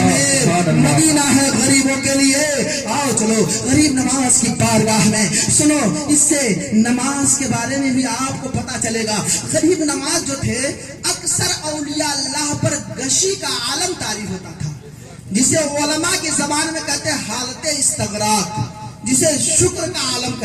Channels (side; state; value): both; identical; correlation 1.00